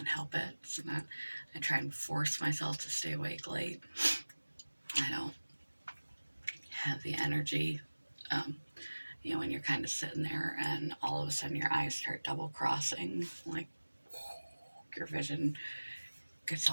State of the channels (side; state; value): both; inverted; correlation -1.00